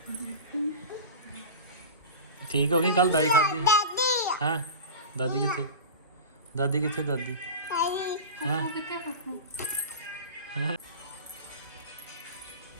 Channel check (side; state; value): both; inverted; correlation -0.30